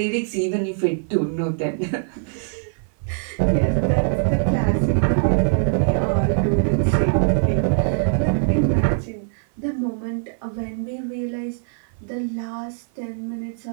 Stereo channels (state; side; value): silent; left; 56 dB below the other